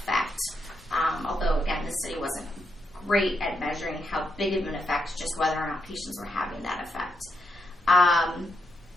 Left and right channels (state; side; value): normal; both; correlation 0.82